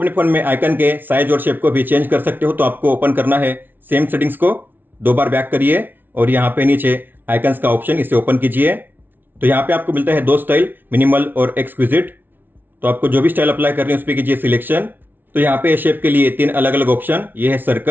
फोन में आइकन के साइज और शेप को भी चेंज कर सकते हो। तो आपको ओपन करना है सेम सेटिंग्स को, 2 बार बैक करिए और यहाँ पे नीचे आइकन्स का ऑप्शन, इसे ओपन कीजिए। तो यहाँ पे आपको मिलता है 2 स्टाइल, मिनिमल और एक्सक्विजिट। तो आपको जो भी स्टाइल अप्लाई करनी है उस पर कीजिए सिलेक्शन। तो यहाँ पे शेप के लिए 3 अलग अलग ऑप्शन, ये है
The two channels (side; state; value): left; late; 0.093 ms